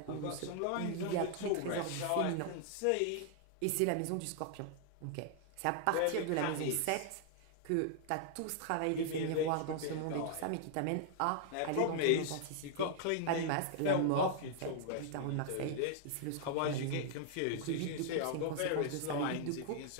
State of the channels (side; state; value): both; different; correlation -0.01